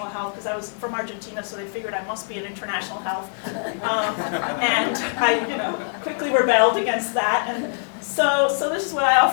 health because I was from Argentina, so they figured I must be in international health. And I quickly rebelled against that. And so this is what I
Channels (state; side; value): silent; right; digital silence